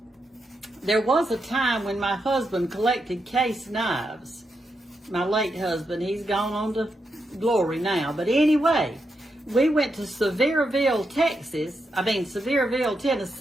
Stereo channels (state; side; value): normal; both; correlation 0.84